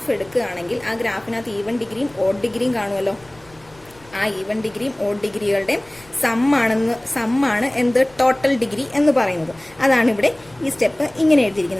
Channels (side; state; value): left; noise; rumble, 27 dB below the sound